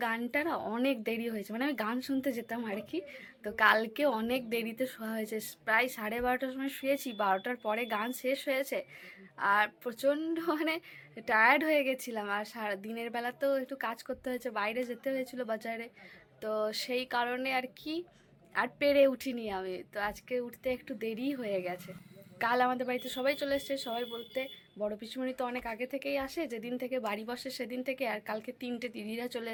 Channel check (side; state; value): both; identical; correlation 1.00